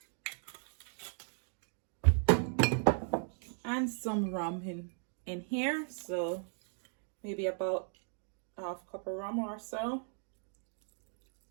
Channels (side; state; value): left; silent; 53 dB below the other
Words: and some rum in here. So maybe about half cup of rum or so.